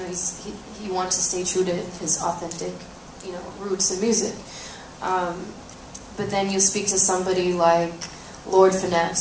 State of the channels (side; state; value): both; identical; correlation 1.00